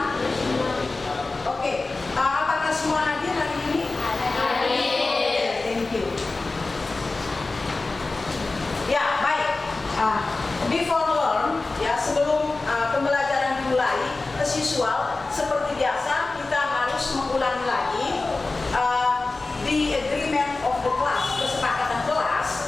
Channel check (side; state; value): right; quieter; 3.5 dB